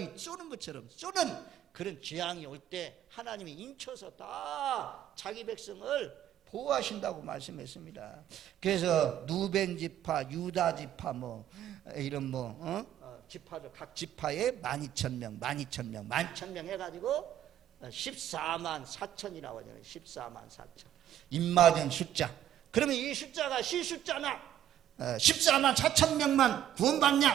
쏘는 것처럼 쏘는 그런 재앙이 올 때 하나님이 인쳐서 다 자기 백성을 보호하신다고 말씀했습니다. 그래서 누벤 지파, 유다 지파 이런 지파들 각 지파에 12,000명 해가지고 14만 4천이라고 하잖아요. 14만 4천 입맞은 숫자. 그러면 이 숫자가 실숫자나 14만 4천 명만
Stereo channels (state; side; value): quieter; left; 11.3 dB